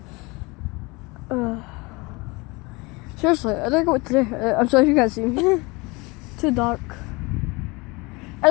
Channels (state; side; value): quieter; right; 25.6 dB